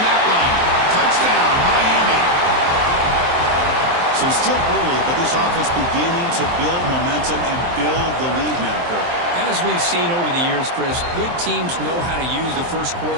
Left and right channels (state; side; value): late; left; 23 ms